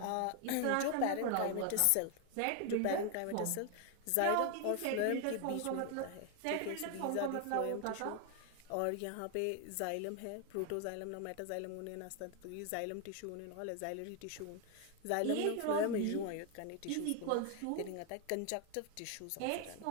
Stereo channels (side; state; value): both; different; correlation 0.01